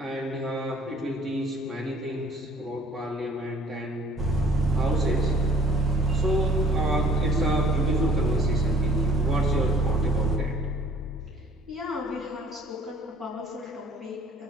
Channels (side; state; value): both; normal; correlation 0.57